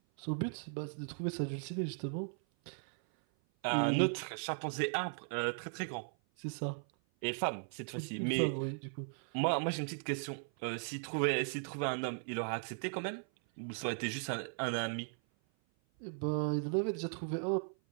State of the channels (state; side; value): silent; left; 53 dB below the other